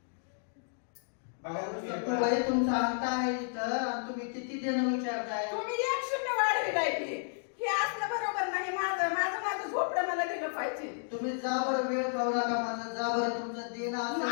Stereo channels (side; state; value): right; silent; digital silence